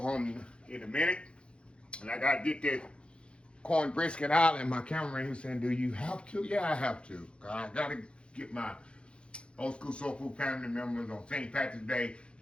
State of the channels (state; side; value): late; right; 0.057 ms